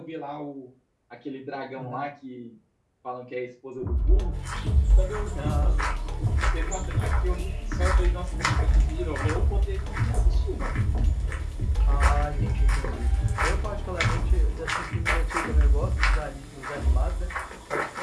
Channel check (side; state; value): both; identical; correlation 1.00